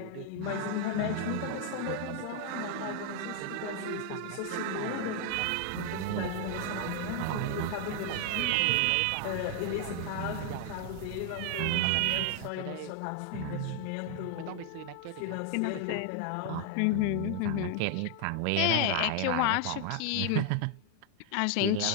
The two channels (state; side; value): different; both; correlation 0.00